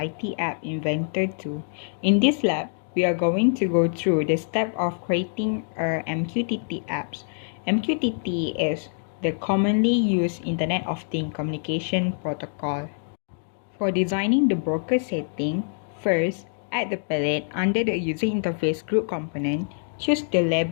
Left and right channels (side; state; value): right; silent; digital silence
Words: App Inventor 2. In this lab, we are going to go through the step of creating our MQTT apps. MQTT is the commonly used Internet of Things communication protocol. For designing the broker setting, first, add the palette under the user interface group component, choose the